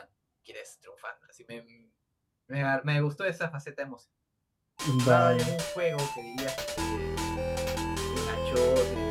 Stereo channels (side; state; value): both; identical; correlation 1.00